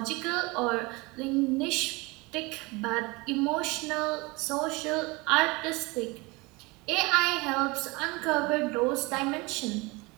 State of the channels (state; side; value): quieter; left; 25.1 dB